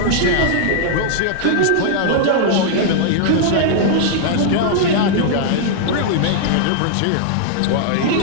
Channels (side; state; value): both; different; correlation -0.01